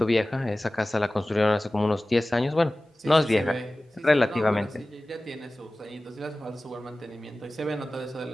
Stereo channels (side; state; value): both; normal; correlation 0.97